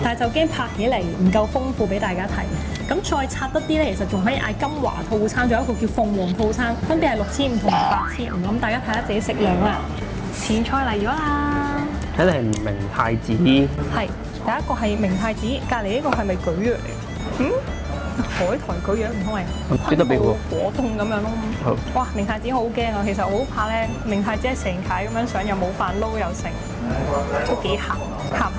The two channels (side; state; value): both; identical; correlation 1.00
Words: 但係就驚拍起嚟唔夠豐富俾大家睇。咁再拆得啲咧，其實仲可以嗌金華套餐，仲有一個叫鳳凰套餐，分別係6500同埋8500。咁大家睇下自己食量啦。前菜嚟咗啦，睇嚟係明太子。係第一個係明太子，隔離呢個係咪蒟蒻嚟？海苔蒟蒻唔通係昆布果凍咁樣咯。哇！明太子好驚啊，其實我好怕咧，明太子係成塊咁樣上，又冇飯撈又剩，都幾鹹